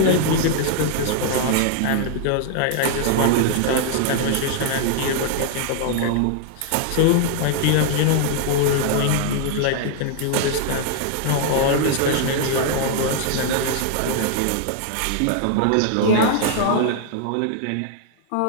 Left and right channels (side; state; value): both; different; correlation 0.00